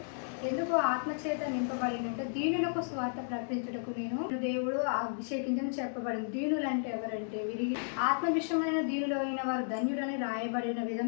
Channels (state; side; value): silent; right; digital silence